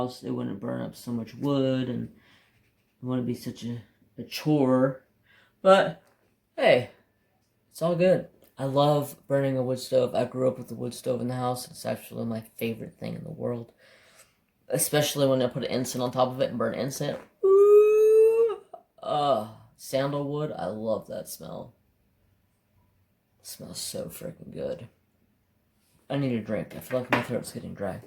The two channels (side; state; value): both; identical; correlation 1.00